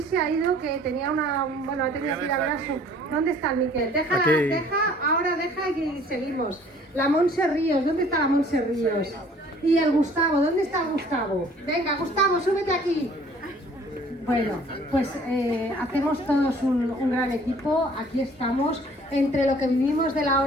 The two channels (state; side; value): normal; both; correlation 0.54